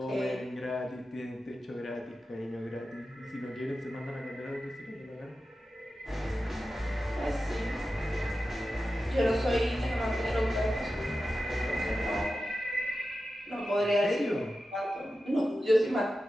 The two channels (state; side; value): normal; both; correlation 0.92